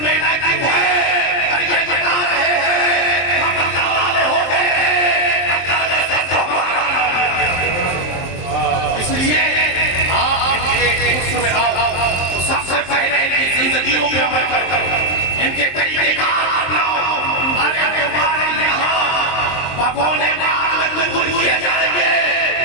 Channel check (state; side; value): late; right; 23 ms